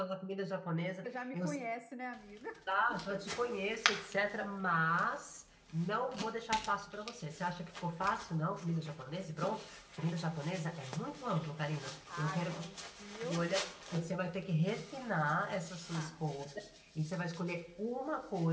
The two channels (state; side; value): identical; both; correlation 1.00